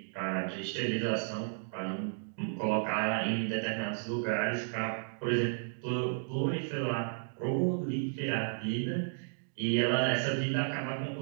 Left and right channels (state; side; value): silent; left; digital silence